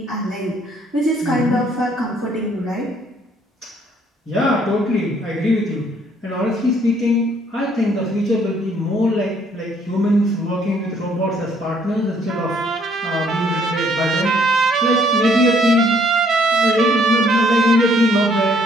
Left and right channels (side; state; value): both; normal; correlation 0.65